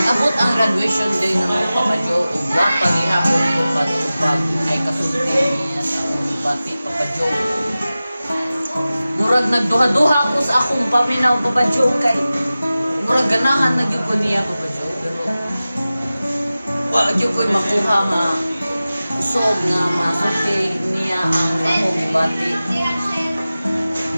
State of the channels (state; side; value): inverted; both; correlation -0.96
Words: ang graduation day ng Papa Joe o ba paghihapon ko pag ay kasulti niya sa akong ibati Papa Joe. Murag nagduha-duha ako sa akong paminaw Papa Joe kay murag ganahan na gyud ko niya Papa Joe pero wa gyud ko makuha nga usog nga masulti niya ang akong ibati.